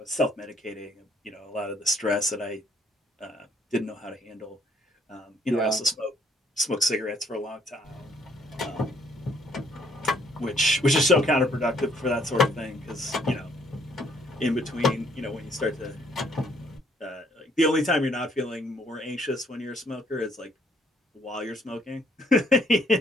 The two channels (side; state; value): both; normal; correlation 0.65